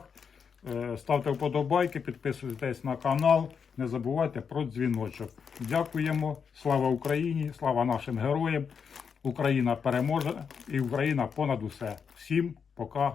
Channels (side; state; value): right; quieter; 6.4 dB